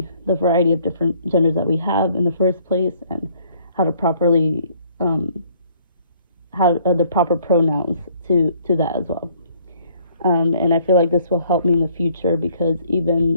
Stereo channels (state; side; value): inverted; both; correlation -0.61